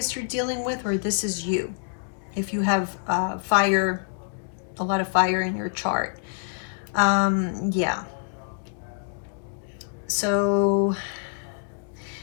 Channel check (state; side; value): silent; right; digital silence